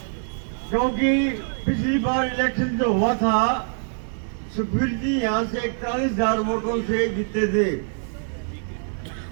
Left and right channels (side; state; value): left; silent; 60 dB below the other